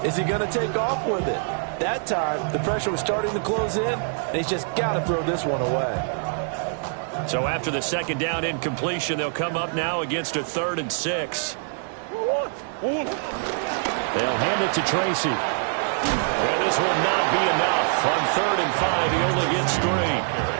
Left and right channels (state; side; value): silent; left; 62 dB below the other